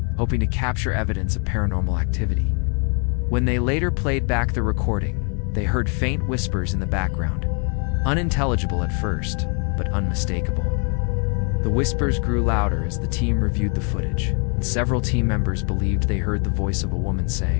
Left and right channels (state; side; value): quieter; right; 38.5 dB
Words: hoping to capture evidence of paranormal activity. When they later played back the recording, they heard faint whispers in the background, unintelligible at first, but unmistakable. The whispers grew louder as the team reviewed the footage, and several team members believed they heard the voice of a woman